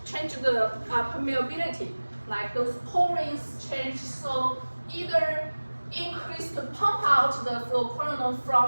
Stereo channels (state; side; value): inverted; both; correlation -1.00